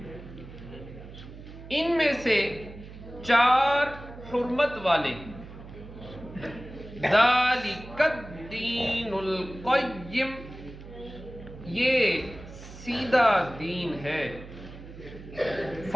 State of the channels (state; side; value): noise; right; hum, 15 dB below the sound